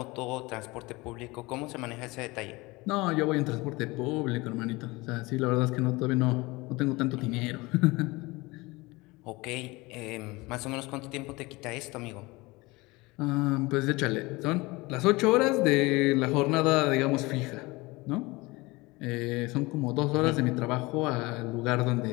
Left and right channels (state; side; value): quieter; right; 22.9 dB